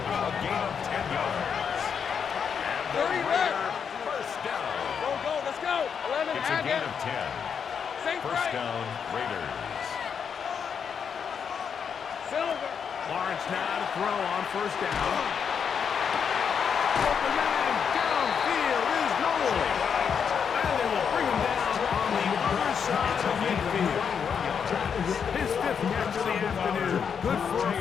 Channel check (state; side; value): quieter; right; 7.0 dB